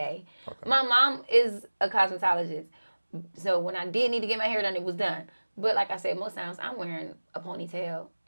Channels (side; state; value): both; inverted; correlation -1.00